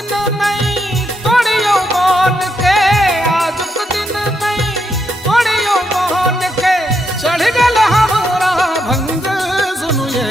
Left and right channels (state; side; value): normal; both; correlation 0.80